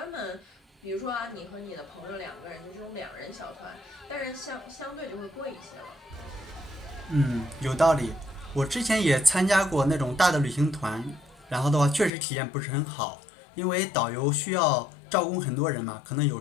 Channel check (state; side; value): drops out; right; at 12.1 s